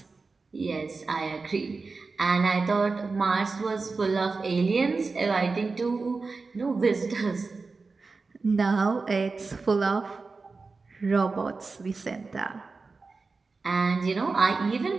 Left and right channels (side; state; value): left; quieter; 4.1 dB